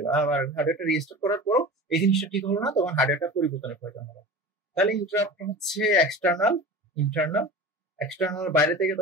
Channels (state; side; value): normal; both; correlation 0.34